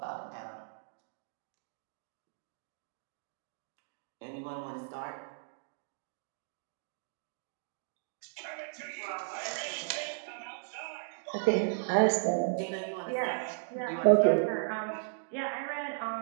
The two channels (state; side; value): silent; left; digital silence